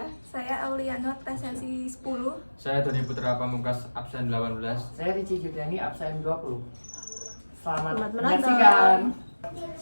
Saya Auliano, absensi 10. Saya Doni Putra Pamungkas, absen 18. Saya Ricci Juliani, absen 20. Selamat menonton. menyaksikan.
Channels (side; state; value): both; inverted; correlation -1.00